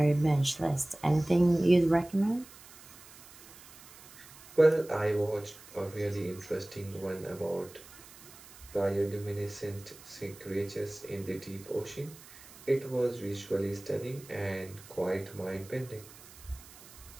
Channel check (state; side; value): noise; right; hiss, 20 dB below the sound